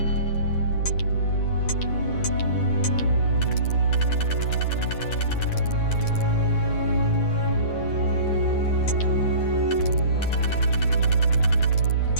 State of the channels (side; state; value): right; late; 9.6 ms